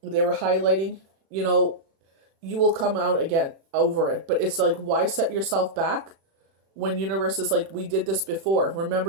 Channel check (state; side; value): late; left; 36 ms